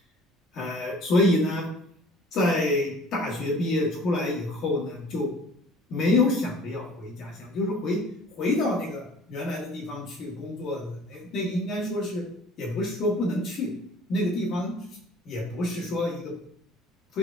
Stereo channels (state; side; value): normal; both; correlation 0.50